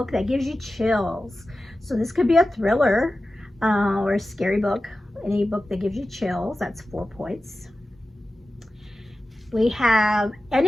that gives you chills. So this could be a thriller or a scary book, any book that gives you chills. That's 4 points. We have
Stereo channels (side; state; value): both; normal; correlation 0.94